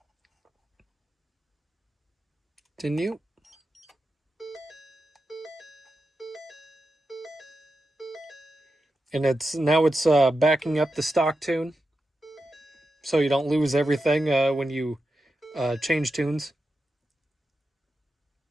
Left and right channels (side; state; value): both; normal; correlation 0.89